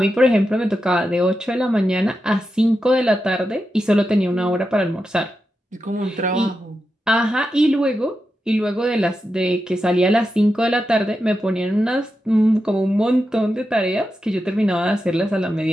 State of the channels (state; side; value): normal; both; correlation 0.89